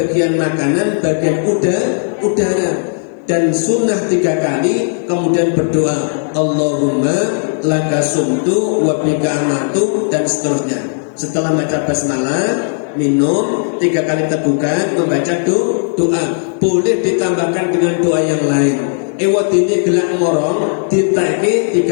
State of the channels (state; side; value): silent; right; digital silence